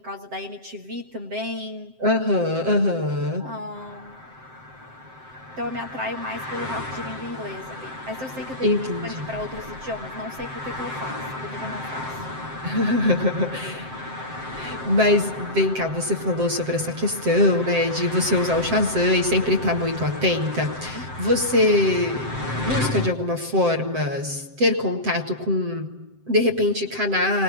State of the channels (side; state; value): left; late; 7.7 ms